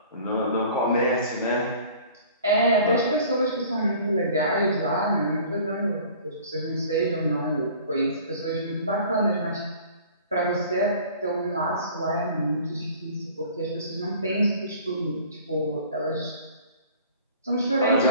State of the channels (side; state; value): both; inverted; correlation -0.48